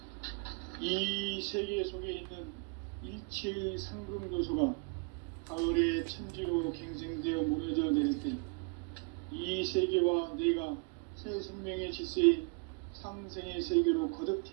이 세계 속에 있는 일체의 상금 요소가 가을의 천지로 갱생되어 무너져 내릴 때 이 세계와 내가 새 생명의 질서인 상생의 세계로 거듭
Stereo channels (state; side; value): quieter; left; 33.8 dB